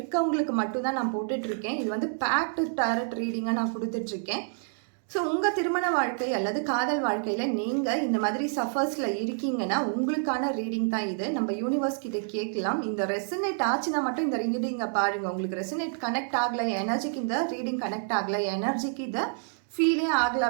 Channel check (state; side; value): silent; left; digital silence